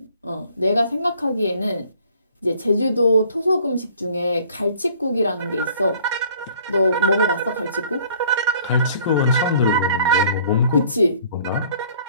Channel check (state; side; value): inverted; both; correlation -0.55